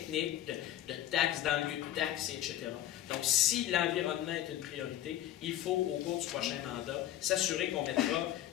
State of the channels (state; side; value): quieter; right; 12.4 dB